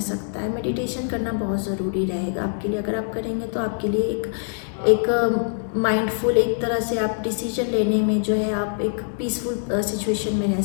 सकता है। मेडिटेशन करना बहुत ज़रूरी रहेगा आपके लिए। अगर आप करेंगे तो आपके लिए एक माइंडफुल, एक तरह से आप डिसीजन लेने में जो है आप एक पीसफुल सिचुएशन में रह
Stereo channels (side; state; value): right; silent; digital silence